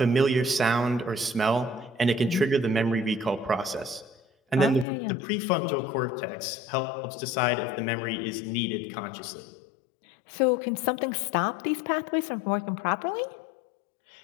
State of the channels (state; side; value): drops out; right; at 4.9 s